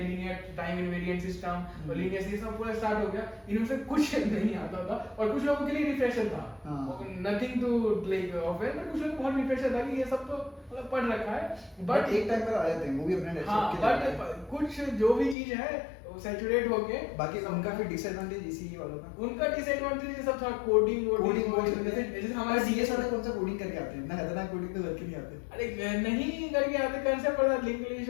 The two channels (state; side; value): drops out; right; at 15.4 s